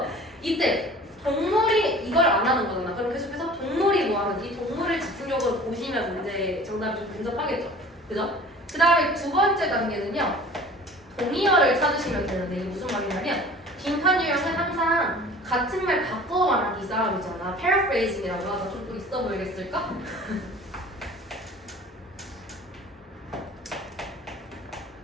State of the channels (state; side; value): normal; both; correlation 0.45